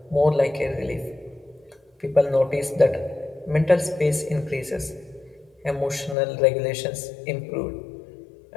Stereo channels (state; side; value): drops out; right; at 6.2 s